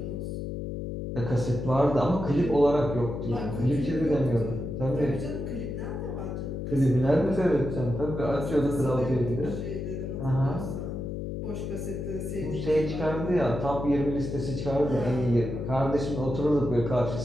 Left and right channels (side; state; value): left; noise; hum, 5 dB below the sound